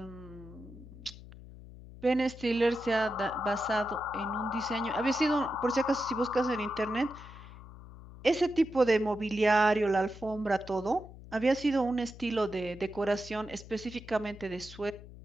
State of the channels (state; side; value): noise; left; hum, 17 dB below the sound